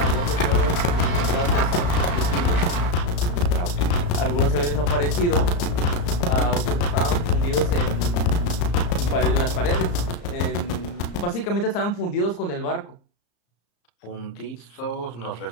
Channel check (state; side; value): late; right; 34 ms